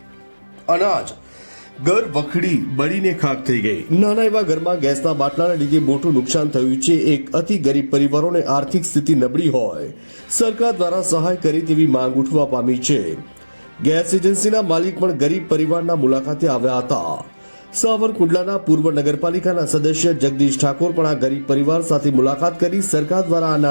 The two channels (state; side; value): inverted; both; correlation -1.00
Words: અનાજ ઘર વખડી બળીને ખાખ થઈ ગઈ. નાના એવા ઘરમાં ગેસના બાટલાના લીધે મોટું નુકસાન થયું છે. એક અતિ ગરીબ પરિવારોને આર્થિક સ્થિતિ નબળી હોય સરકાર દ્વારા સહાય કરી તેવી માંગ ઉઠવા પામી છે. ગેસ એજન્સીના માલિક પણ ગરીબ પરિવારના મુલાકાતે આવ્યા હતા. સાવરકુંડલાના પૂર્વ નગરપાલિકાના સદસ્ય જગદીશ ઠાકોર પણ આ ગરીબ પરિવાર સાથે મુલાકાત કરી સરકાર દ્વારા આ